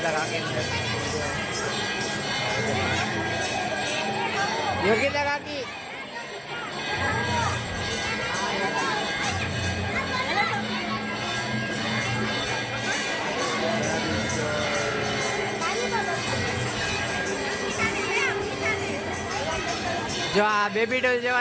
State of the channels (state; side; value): identical; both; correlation 1.00